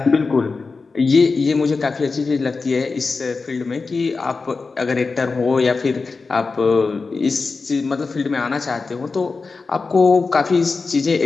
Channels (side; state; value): right; quieter; 4.2 dB